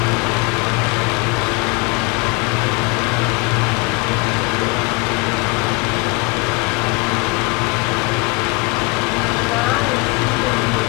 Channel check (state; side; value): quieter; right; 27.8 dB